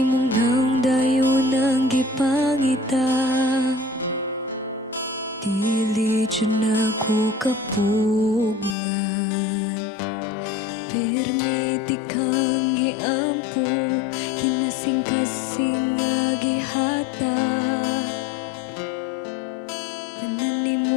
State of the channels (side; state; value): right; drops out; at 8.8 s